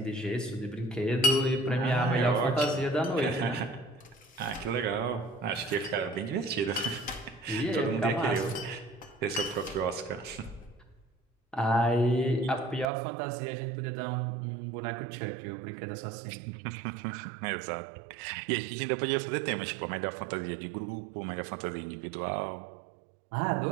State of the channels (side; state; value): left; drops out; at 12.9 s